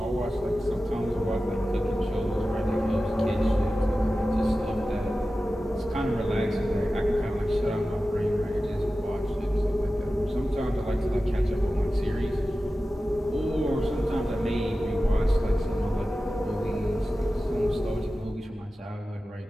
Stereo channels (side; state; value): both; normal; correlation 0.94